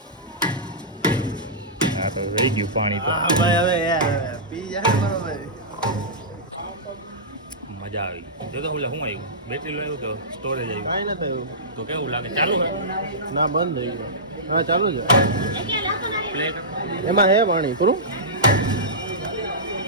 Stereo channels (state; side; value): normal; both; correlation -0.16